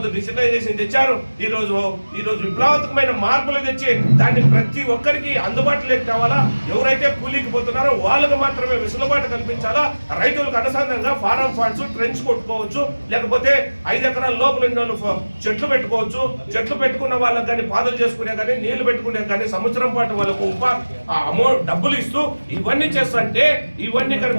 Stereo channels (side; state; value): both; inverted; correlation -1.00